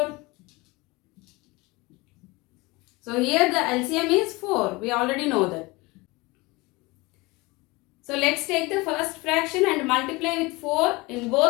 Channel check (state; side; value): quieter; right; 23.7 dB